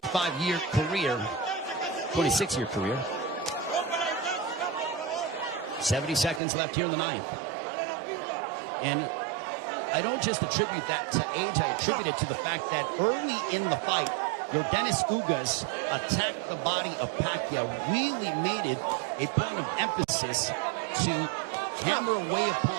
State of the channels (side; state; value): left; drops out; at 6.4 s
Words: career, 26-year career. 70 seconds left here in the 9th. And I don't just attribute that to age, I attribute it to the fact that early in the fight, your Dennis Ugas attacked the body of Pacquiao, really made it a point of emphasis to hammer away